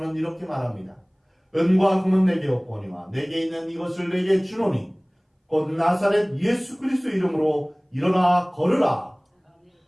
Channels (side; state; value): both; identical; correlation 1.00